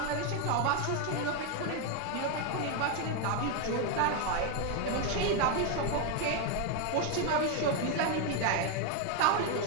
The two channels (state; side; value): different; both; correlation 0.01